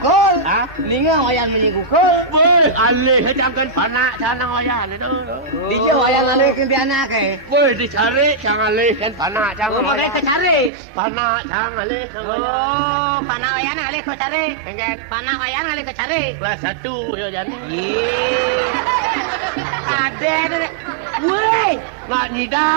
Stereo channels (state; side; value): drops out; left; at 10.7 s